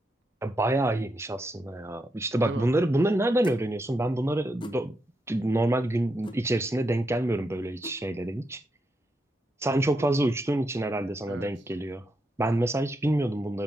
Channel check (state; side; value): normal; both; correlation 0.82